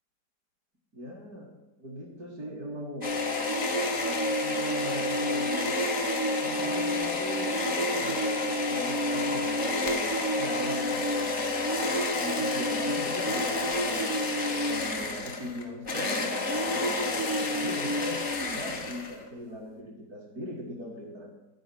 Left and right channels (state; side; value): late; left; 4.1 ms